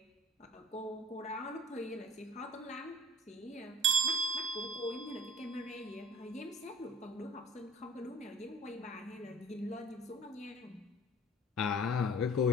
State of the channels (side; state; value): both; normal; correlation 0.46